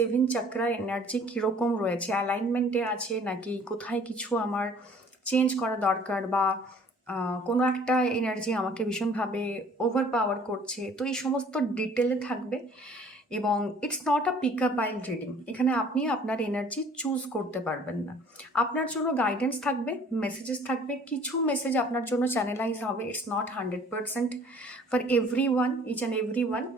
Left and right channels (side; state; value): both; normal; correlation 0.53